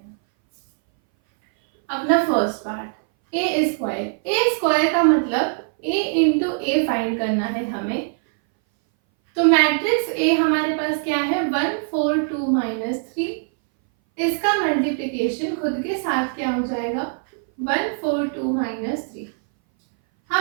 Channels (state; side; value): silent; left; 60 dB below the other